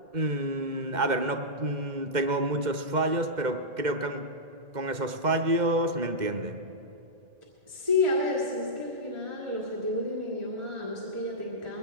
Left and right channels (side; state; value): left; late; 2.1 ms